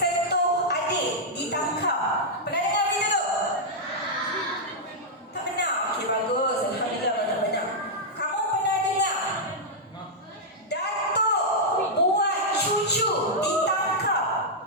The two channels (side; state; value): both; normal; correlation -0.06